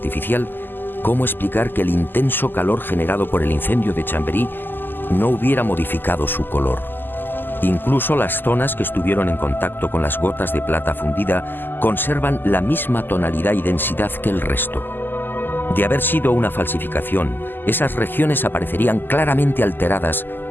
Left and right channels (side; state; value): right; late; 0.092 ms